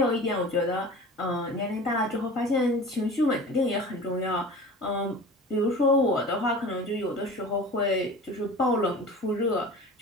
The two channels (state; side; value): normal; both; correlation 0.38